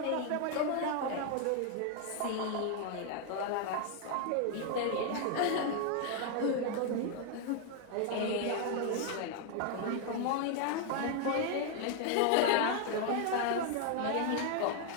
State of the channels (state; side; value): different; both; correlation 0.00